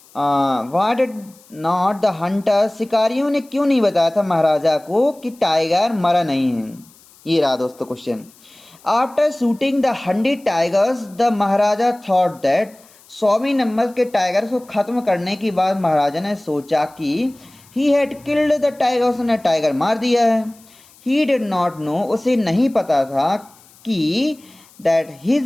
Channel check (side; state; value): left; noise; hiss, 27 dB below the sound